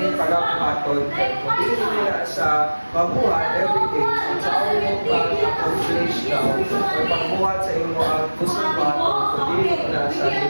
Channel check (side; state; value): both; inverted; correlation -1.00